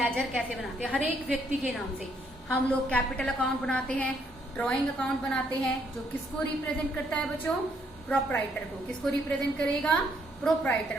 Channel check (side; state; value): both; normal; correlation 0.70